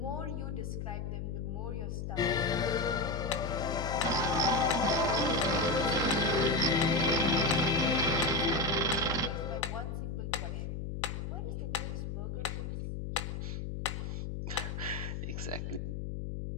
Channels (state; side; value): noise; left; hum, 4 dB below the sound